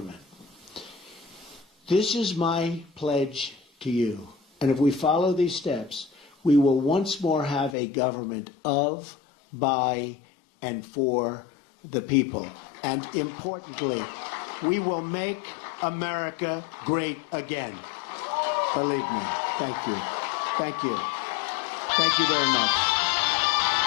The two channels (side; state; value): right; drops out; at 7.8 s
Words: This is my pledge to you. And if we follow these steps, we will once more have a government of, by, and for the people. And importantly, we will make America great again. Believe me. Thank you. Thank you. Thank you very much.